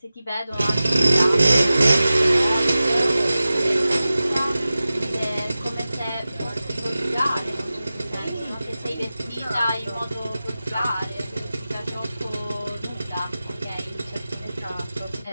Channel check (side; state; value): both; inverted; correlation -0.95